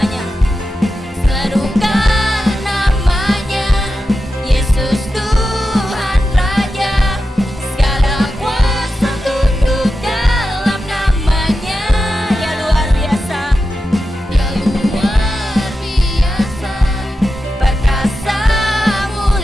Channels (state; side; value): normal; both; correlation 0.91